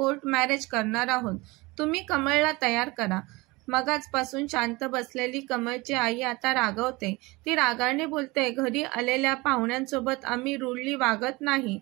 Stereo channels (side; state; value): left; quieter; 23.3 dB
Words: मॅरेज करणार आहोत. तुम्ही कमळला तयार करा. मगाचपासून शांत बसलेली कमळची आई आता रागावते. ती रागाने बोलते, घरी आलेल्या पाहुण्यांसोबत आम्ही रूडली वागत नाही,